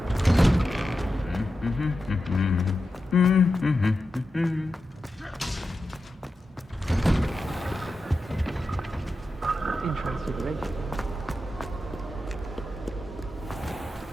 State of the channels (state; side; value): normal; both; correlation 0.90